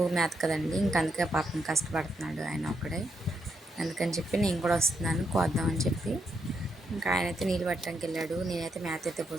మేత కదండి, ఇంక అందుకే పాపం కష్టపడుతున్నాడు ఆయన ఒక్కడే. అందుకని చెప్పి నేను కూడా వస్తున్నాను కోద్దామని చెప్పి. ఇంకా ఆయనైతే నీళ్ళు పట్టడానికి వెళ్ళాడు, నేనైతే మేత అయితే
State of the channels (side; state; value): both; normal; correlation 0.80